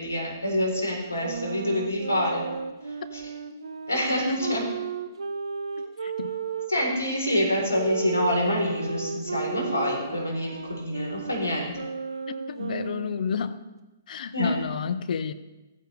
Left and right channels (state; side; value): inverted; both; correlation -0.69